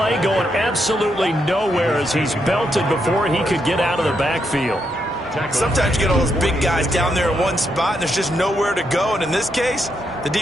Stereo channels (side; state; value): both; normal; correlation 0.80